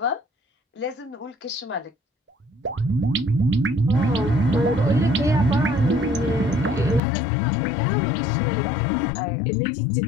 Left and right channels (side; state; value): right; drops out; at 7.0 s